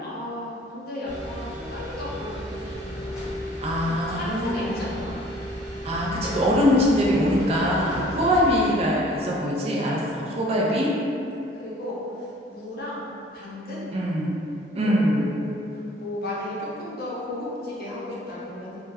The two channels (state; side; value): normal; both; correlation 0.52